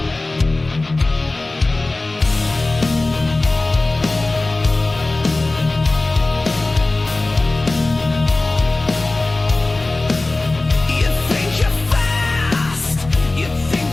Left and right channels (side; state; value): right; quieter; 3.0 dB